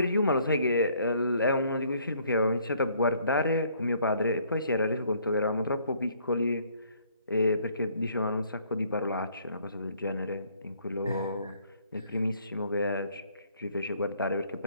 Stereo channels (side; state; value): both; inverted; correlation -0.64